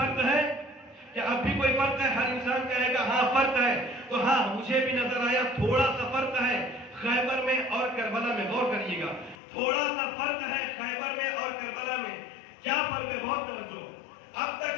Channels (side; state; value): right; drops out; at 9.3 s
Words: ہے؟ کیا اب بھی کوئی فرق ہے؟ ہر انسان کہے گا ہاں فرق ہے. تو ہاں مجھے بھی نظر آیا تھوڑا سا فرق ہے خیبر میں اور کربلا میں. غور کریے گا، تھوڑا سا فرق ہے خیبر میں اور کربلا میں. کیا فرق ہے؟ بہت توجہ. اب